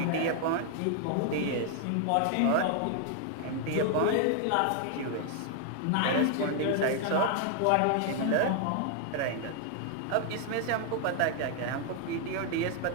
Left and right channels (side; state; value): both; different; correlation 0.00